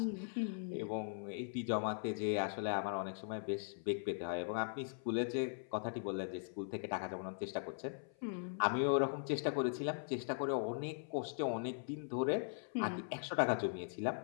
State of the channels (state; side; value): silent; right; 51 dB below the other